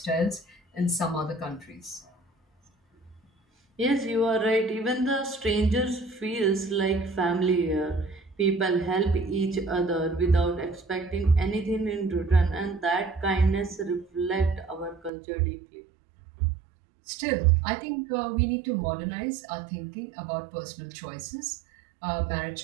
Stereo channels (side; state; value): left; drops out; at 15.1 s